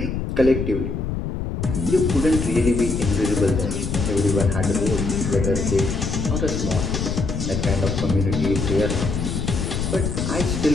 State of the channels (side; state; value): left; noise; rumble, 3 dB below the sound